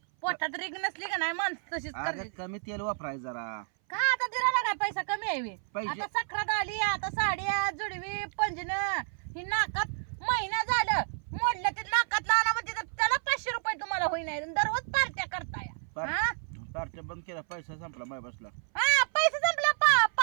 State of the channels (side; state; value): left; silent; 58 dB below the other